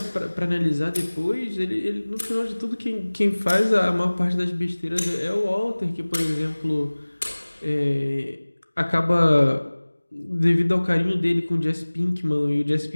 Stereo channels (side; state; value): both; inverted; correlation -1.00